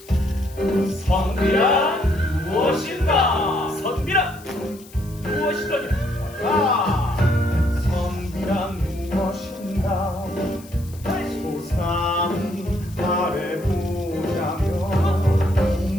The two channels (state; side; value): noise; left; hiss, 22 dB below the sound